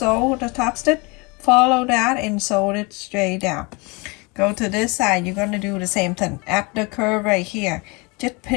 the top stitch? Follow that and sew it straight down. Go to this side, you're going to do the same thing. At the curve right here, just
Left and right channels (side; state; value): right; quieter; 27.9 dB